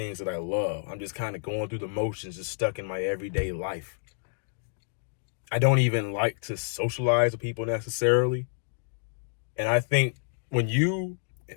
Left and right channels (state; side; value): silent; right; digital silence